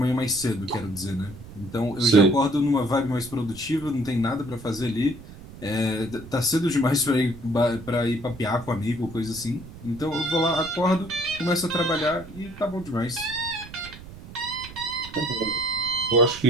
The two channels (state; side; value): noise; right; rumble, 16 dB below the sound